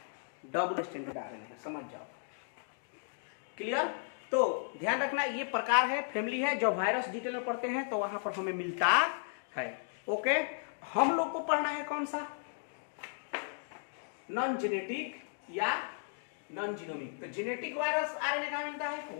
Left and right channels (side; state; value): right; silent; digital silence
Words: आरएनए है, समझ जाओ। क्लियर? तो ध्यान रखना, ये प्रकार है, फैमिली है। जब वायरस डिटेल में पढ़ते हैं तो वहां पर हमें मिलता है। ओके, हम लोग को पढ़ना है कौन सा? नॉन जेनेटिक या नॉन जीनोमिक। तो जेनेटिक वायरस आरएनए कहां मिलता है?